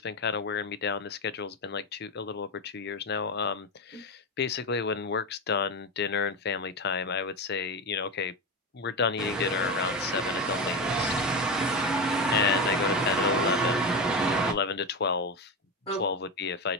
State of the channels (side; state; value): both; normal; correlation 0.17